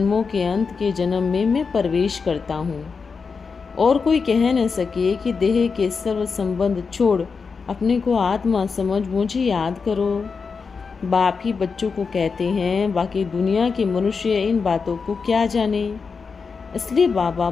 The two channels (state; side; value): quieter; right; 5.1 dB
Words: के अंत के जन्म में मैं प्रवेश करता हूँ और कोई कह न सके कि देह के सर्व संबंध छोड़ अपने को आत्मा समझ मुझे याद करो। बाप ही बच्चों को कहते हैं, बाकी दुनिया के मनुष्य इन बातों को क्या जाने। इसलिए बाबा